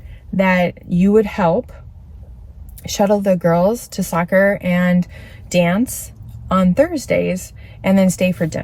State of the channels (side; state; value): both; identical; correlation 1.00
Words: that you would help shuttle the girls to soccer and dance on Thursdays and then stay for